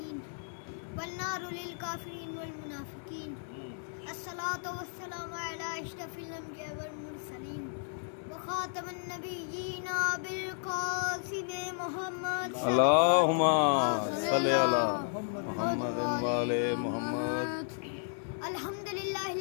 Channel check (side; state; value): right; silent; digital silence